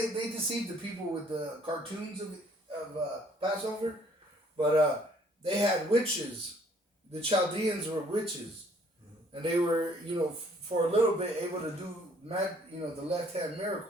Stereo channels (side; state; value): both; normal; correlation 0.61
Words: deceived the people with the cartoons of Passover, but they had witches. The Chaldeans were witches, and they were, for a little bit able to do, the left hand